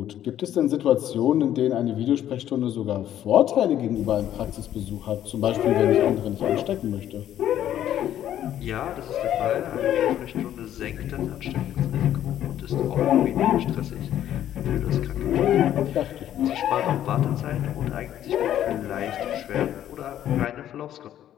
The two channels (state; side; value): quieter; right; 11.4 dB